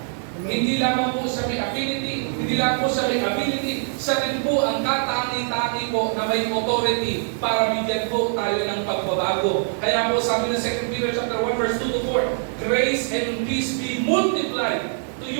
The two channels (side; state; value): left; silent; 63 dB below the other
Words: Hindi lamang po siya may affinity, hindi lang po siya may ability, siya rin po ang katangi-tangi po na may authority para bigyan po tayo ng pagbabago. Kaya po sabi ng 2 Peter chapter 1 verse 2 to 4, grace and peace be multiplied to